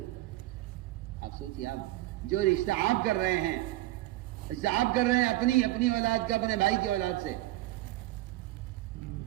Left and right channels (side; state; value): left; quieter; 16.8 dB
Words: آپ سوچیے، آپ جو رشتہ آپ کر رہے ہیں، رشتہ آپ کر رہے ہیں اپنی اولاد کا اپنے بھائی کی اولاد سے،